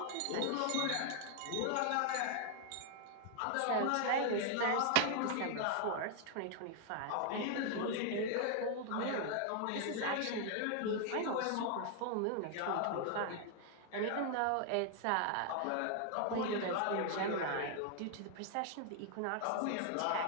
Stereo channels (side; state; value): both; different; correlation 0.00